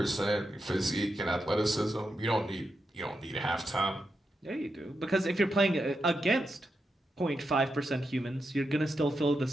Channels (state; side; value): normal; both; correlation 0.86